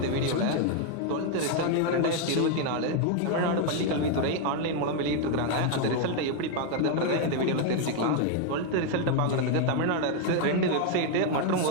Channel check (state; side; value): different; both; correlation 0.00